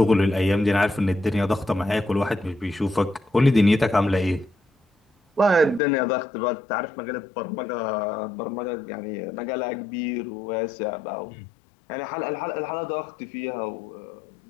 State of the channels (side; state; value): right; drops out; at 5.8 s